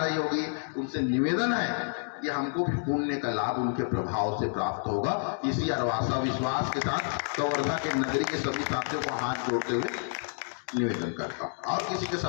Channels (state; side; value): silent; right; 58 dB below the other